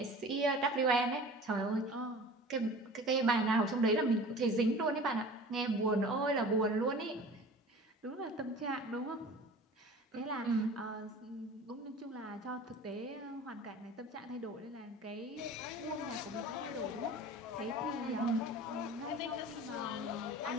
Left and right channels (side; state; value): both; normal; correlation 0.41